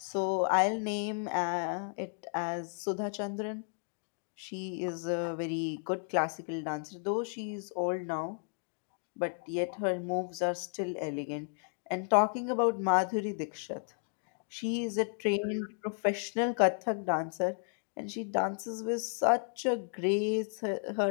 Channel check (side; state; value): right; silent; 55 dB below the other